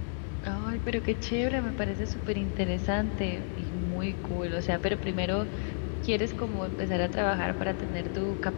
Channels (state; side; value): silent; right; 57 dB below the other